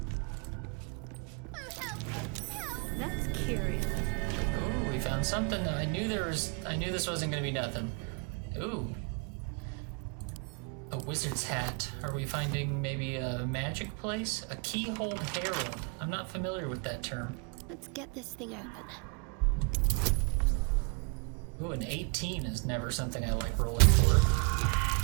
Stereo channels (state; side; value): quieter; left; 34.3 dB